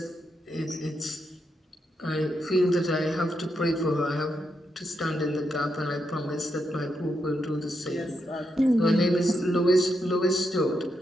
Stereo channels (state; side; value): normal; both; correlation 0.82